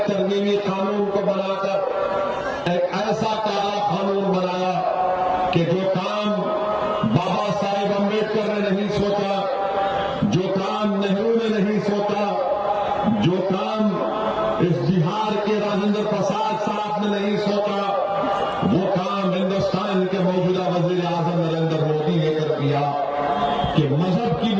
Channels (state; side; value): identical; both; correlation 1.00